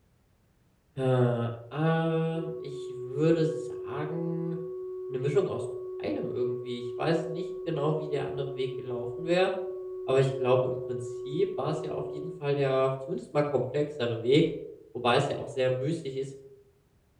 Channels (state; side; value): identical; both; correlation 1.00